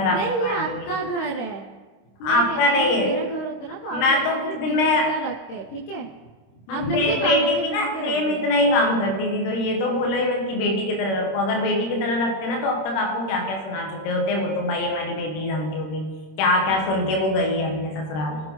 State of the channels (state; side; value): late; right; 26 ms